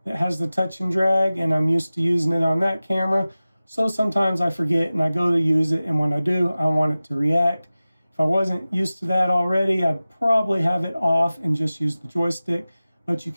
that has the touch and drag, and I'm used to using it on that camera. So sometimes I forget and I go to use it, and when I do, I want it to react. If I wasn't used to that already, I'd probably have it off and just use the joystick, but you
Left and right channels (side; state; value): both; inverted; correlation -0.96